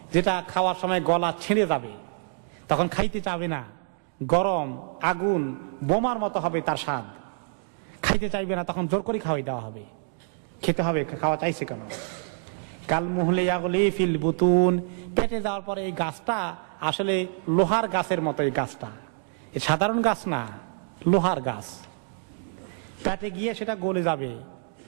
যেটা খাওয়ার সময় গলা ছিঁড়ে যাবে, তখন খাইতে চাবে না, গরম আগুন বোমার মতো হবে তার স্বাদ, খাইতে চাইবে না, তখন জোর করে খাওয়াই দেওয়া হবে, খেতে হবে, খাওয়া চাইছে কেন। কাল মুহলে ইয়াগলি ফিল বুতুন। পেটে যাওয়ার পরে এই গাছটা আসলে লোহার গাছের মতো, এই গাছটা সাধারণ গাছ না, লোহার গাছ। পেটে গিয়ে সেটা গলে যাবে,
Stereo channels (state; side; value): silent; left; digital silence